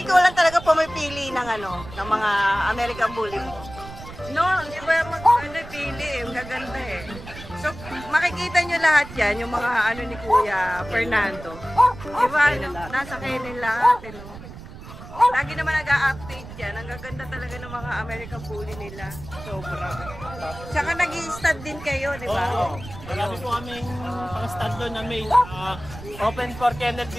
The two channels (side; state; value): right; noise; rumble, 14 dB below the sound